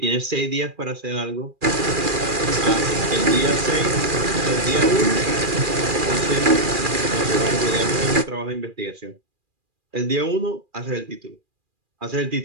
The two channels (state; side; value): late; left; 2.4 ms